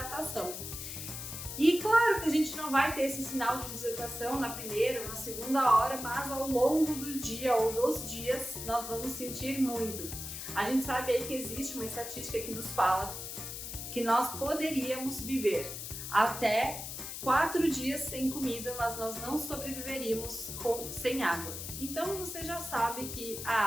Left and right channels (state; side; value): noise; left; hiss, 7 dB below the sound